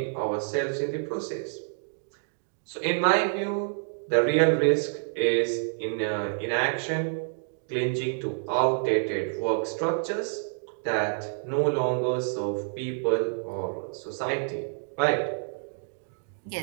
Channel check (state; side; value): silent; left; digital silence